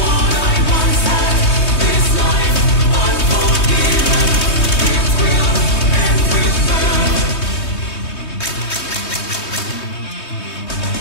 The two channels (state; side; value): late; right; 3.2 ms